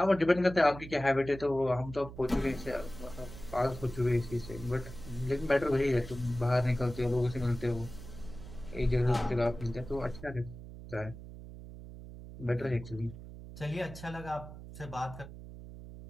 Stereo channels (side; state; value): right; noise; hum, 13 dB below the sound